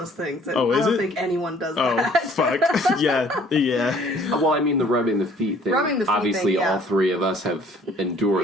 things. That Oh, is I don't it? think anyone does Oh, that. fuck. Yeah. well, I mean the rubbing the feet thing. Rubbing the feet Obviously, thing, yeah. all three of us have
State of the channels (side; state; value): both; normal; correlation 0.56